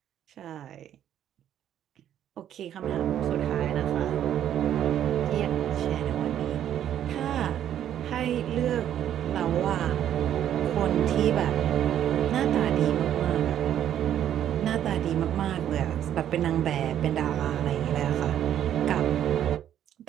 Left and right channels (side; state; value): left; quieter; 10.6 dB